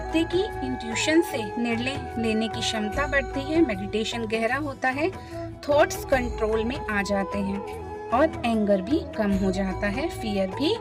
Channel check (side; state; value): both; identical; correlation 1.00